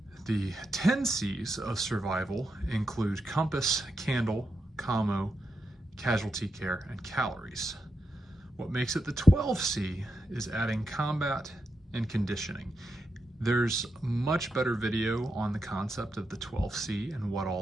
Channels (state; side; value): normal; both; correlation 0.86